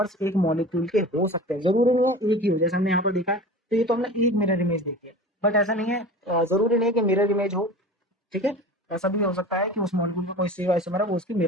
एक मॉलिक्यूल के हो सकते हैं, जरूरी नहीं है एक ही हो, जैसे हमने यहाँ पर देखा है, तो ये तो हमने एक मिरर इमेज देखी है, बट ऐसा नहीं है, जरूरी नहीं है कि मिरर इमेज हो, ठीक है। ऐसा भी हो सकता है कि उस मॉलिक्यूल का कोई स्टीरियो आइसोमर है वो उसकी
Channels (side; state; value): both; normal; correlation 0.36